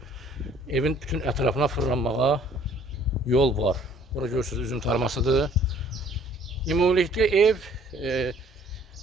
Evin bütün ətrafına fırlanmağa yol var. Bura görürsünüz, üzüm tarmasıdır. Ümumilikdə ev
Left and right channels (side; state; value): both; normal; correlation 0.57